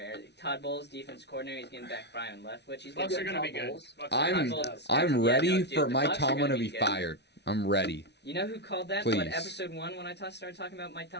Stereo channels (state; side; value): late; right; 0.50 ms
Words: Todd Bowles, defense coordinator, he's getting back Brian Leftwich. He's Bucks getting are going to be Todd good. Bowles. Bucks are I'm- gonna be Todd good. Bowles. I'm Yeah, ready no, dude, for the Mike Bucks are Tomlin gonna to be good. fired. I'm ready. You know who called that? Please. What episode 1 when I started talking about Mike